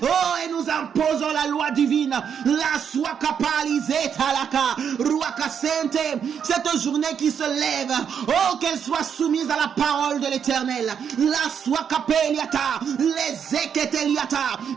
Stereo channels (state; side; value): quieter; left; 7.7 dB